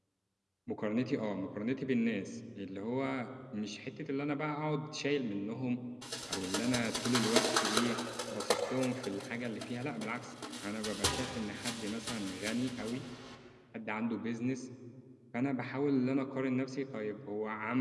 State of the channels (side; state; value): both; identical; correlation 1.00